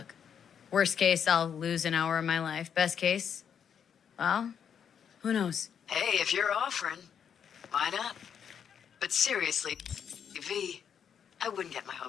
Worst case, I'll lose an hour of my life. Best case, well, who knows? Hey, if you're offering, why not? But seriously, V, I wouldn't get my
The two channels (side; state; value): right; quieter; 7.9 dB